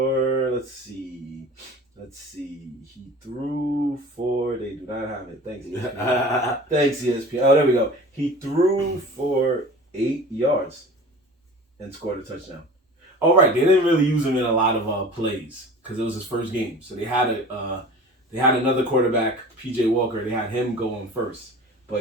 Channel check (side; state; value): both; normal; correlation 0.40